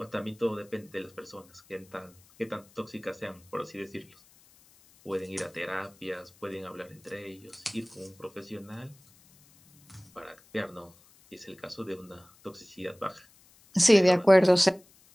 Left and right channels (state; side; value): noise; left; hiss, 28 dB below the sound